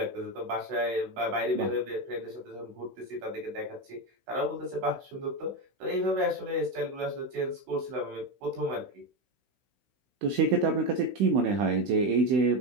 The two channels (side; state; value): left; late; 16 ms